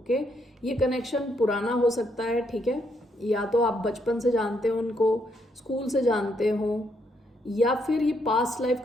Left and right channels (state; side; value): normal; both; correlation 0.75